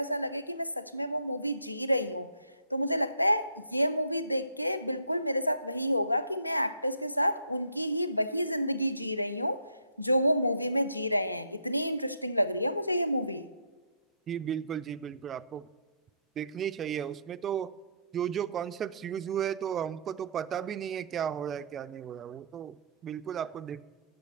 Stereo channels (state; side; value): inverted; both; correlation -0.63